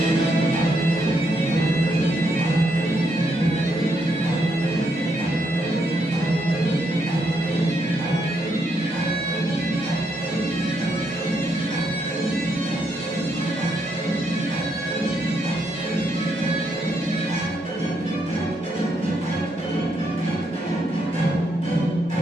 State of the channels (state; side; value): normal; both; correlation 0.77